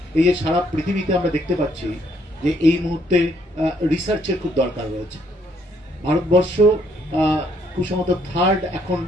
এই যে সারা পৃথিবীতে আমরা দেখতে পাচ্ছি যে এই মুহূর্তে রিসার্চের খুব দরকার রয়েছে। ভারতবর্ষ খুব সম্ভবত 3rd এখন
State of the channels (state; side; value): normal; both; correlation 0.69